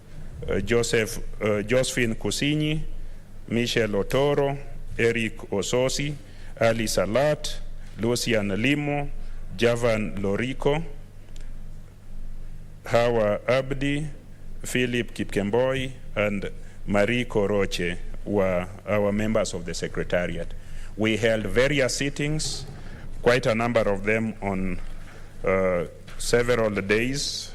Josephine Kusinyi, Michelle Otoro, Eric Ososi, Ali Salat, Lucian Limo, Javan Lorico, Hawa Abdi, Philip Kipkemboi, and Marie Koroche were our members of the Secretariat. We held various sittings, quite a number of them on several days.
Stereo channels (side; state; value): both; identical; correlation 1.00